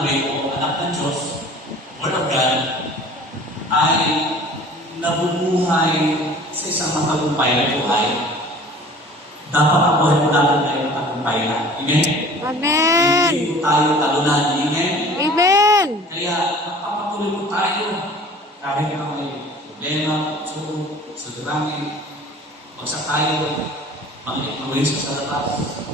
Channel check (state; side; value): normal; both; correlation 0.46